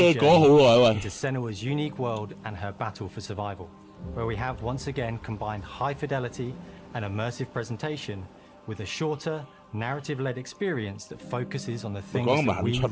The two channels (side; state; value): both; identical; correlation 1.00